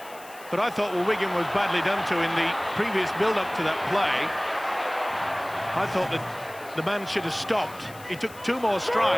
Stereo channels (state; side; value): noise; left; hiss, 20 dB below the sound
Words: But I thought, well, Wigan was badly done to in the previous build-up to that play. I thought that the man should have stopped. He took 2 more